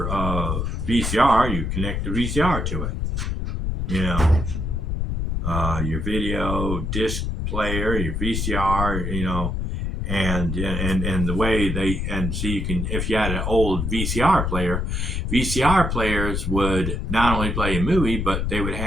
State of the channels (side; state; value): left; noise; rumble, 1 dB below the sound